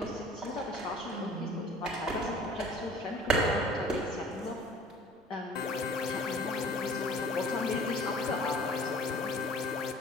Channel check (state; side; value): normal; both; correlation 0.48